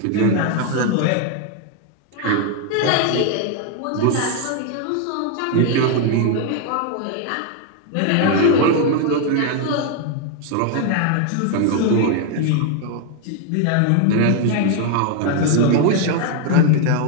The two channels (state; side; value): different; both; correlation 0.01